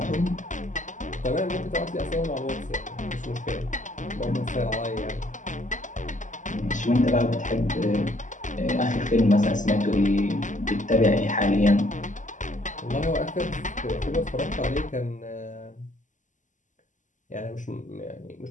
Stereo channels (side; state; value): right; late; 0.37 ms